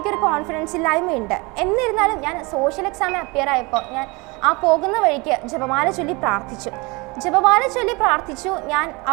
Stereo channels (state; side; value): quieter; left; 26.6 dB